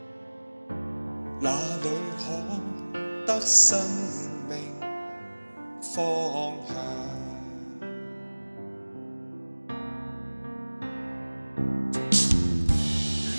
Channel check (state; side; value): inverted; both; correlation -1.00